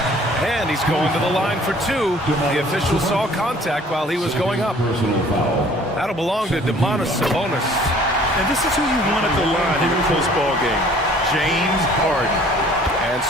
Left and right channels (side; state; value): both; normal; correlation 0.54